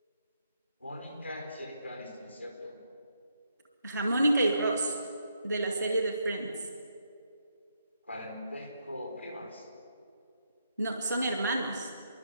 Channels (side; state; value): both; inverted; correlation -0.78